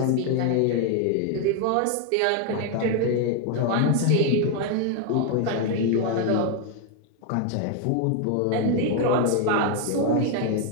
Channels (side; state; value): both; different; correlation 0.01